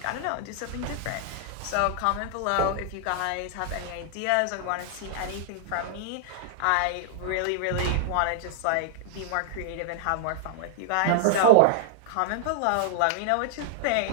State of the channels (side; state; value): both; different; correlation -0.01